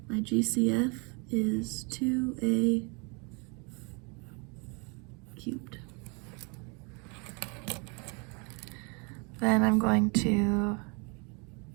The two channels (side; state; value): left; quieter; 32.1 dB